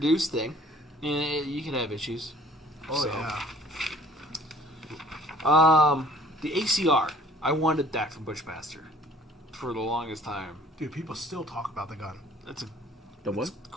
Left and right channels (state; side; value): normal; both; correlation 0.55